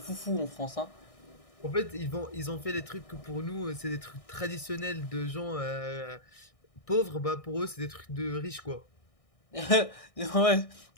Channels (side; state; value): right; late; 1.6 ms